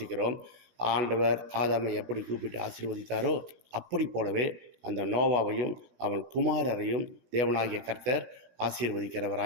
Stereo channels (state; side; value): late; left; 17 ms